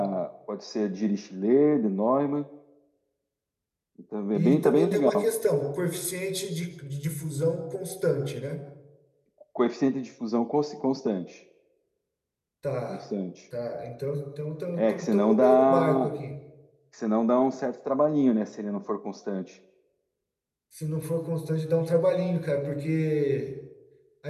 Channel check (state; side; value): identical; both; correlation 1.00